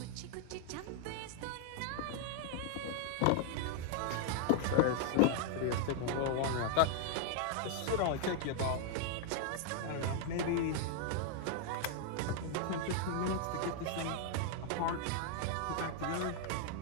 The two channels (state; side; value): different; both; correlation 0.00